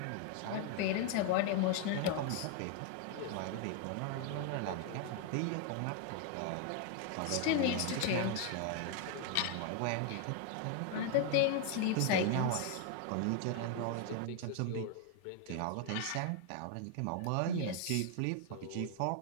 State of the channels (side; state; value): both; different; correlation 0.01